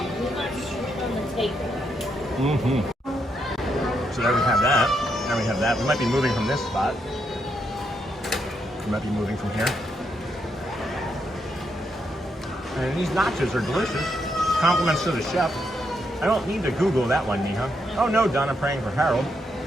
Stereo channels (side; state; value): both; normal; correlation 0.79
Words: Mm-hmm. So there we have that. Now we have that. We might be moving from this spot. We might be moving from here. And these nachos are delicious. Compliments to the chef. I don't need to Google that one, Neha. Oh no, Donna praying for Harold.